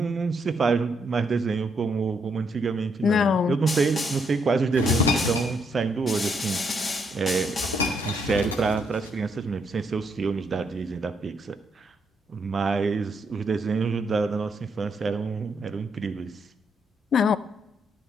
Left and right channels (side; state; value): both; normal; correlation 0.75